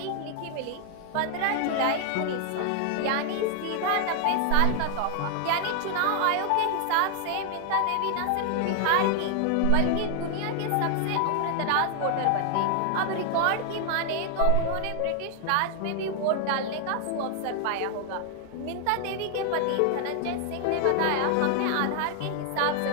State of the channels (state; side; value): different; both; correlation 0.00